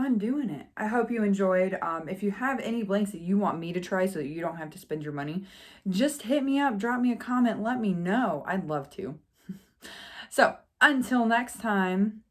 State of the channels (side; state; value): both; identical; correlation 1.00